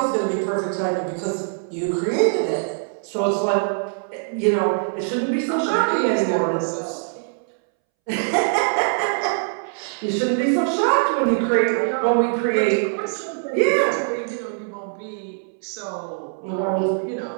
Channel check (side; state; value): left; silent; 64 dB below the other